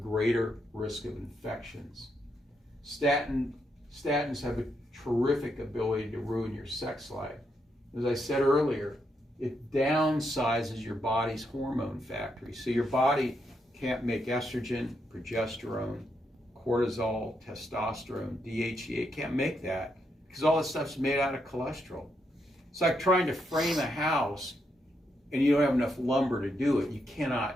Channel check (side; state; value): both; normal; correlation 0.80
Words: risk of infections. Statins have a terrific ability to ruin your sex life. As I said earlier, it downsizes your body's hormone factory. So your body can't make estrogen, progesterone, cortisol, testosterone, DHEA. It can't make that because all this stuff's made out of cholesterol. It's like trying to frame a house and you don't have enough lumber to do it. You